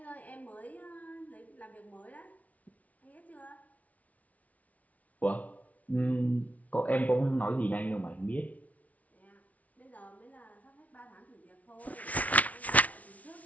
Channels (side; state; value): right; late; 0.069 ms